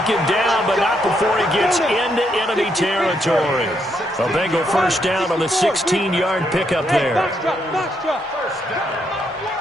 down, but not before he gets into enemy territory. A Bengal first down on the 16-yard pickup there.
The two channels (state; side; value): normal; both; correlation 0.77